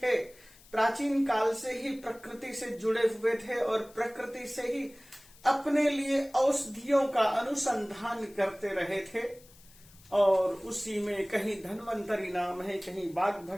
प्राचीन काल से ही प्रकृति से जुड़े हुए थे और प्रकृति से ही अपने लिए औषधियों का अनुसंधान करते रहे थे। और उसी में कहीं धन्वंतरी नाम है, कहीं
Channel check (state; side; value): noise; left; hiss, 25 dB below the sound